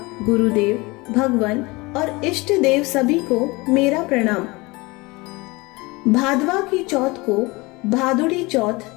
गुरुदेव, भगवान और इष्ट देव सभी को मेरा प्रणाम। भादवा की चौथ को भादुड़ी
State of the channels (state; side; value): quieter; right; 23.8 dB